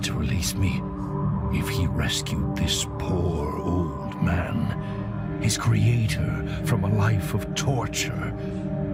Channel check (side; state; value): both; identical; correlation 1.00